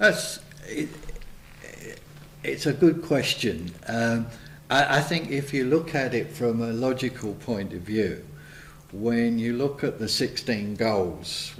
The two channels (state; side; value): identical; both; correlation 1.00